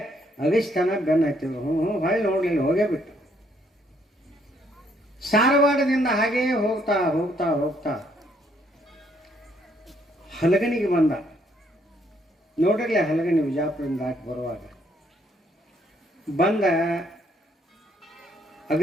ಅಗಿಸ್ತಾನ ಬೆನ್ನ ಹತ್ತಿದ್ರು. ಹೊಳ್ಳಿ ನೋಡ್ಲಿಲ್ಲ, ಹೋಗೇ ಬಿಟ್ಟು. ಸಾರವಾಡದಿಂದ ಹಾಗೇ ಹೋಗ್ತಾ ಹೋಗ್ತಾ ಹೋಗ್ತಾ ಹಲಗನಿಗೆ ಬಂದ. ನೋಡಿರ್ಲಿ ಹಲಗನಿ ವಿಜಾಪುರದಿಂದ ದಾಟಿ ಬರುವಾಗ ಬಂದ.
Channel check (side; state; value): both; normal; correlation 0.69